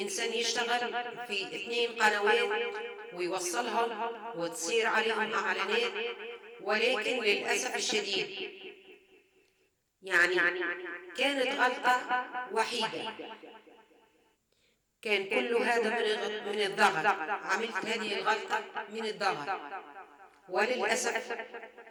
يشتغل في 2 قنوات ويوصلهم وتصير عليهم إعلانات، ولكن للأسف الشديد يعني كانت غلطة وحيدة. كان كل هذا من الضغط. عملت هذه الغلطة من الضغط، وللأسف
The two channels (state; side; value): identical; both; correlation 1.00